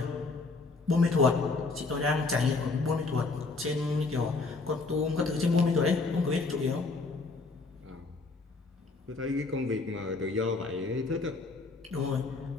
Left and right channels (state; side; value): quieter; right; 3.7 dB